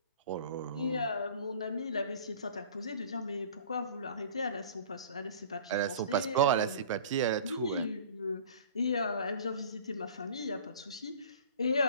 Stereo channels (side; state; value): both; inverted; correlation -0.44